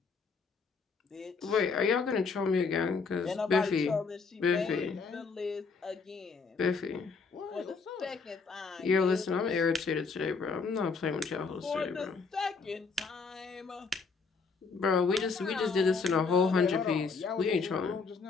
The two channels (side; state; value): right; quieter; 4.8 dB